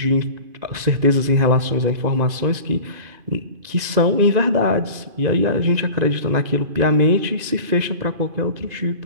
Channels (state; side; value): late; left; 2.5 ms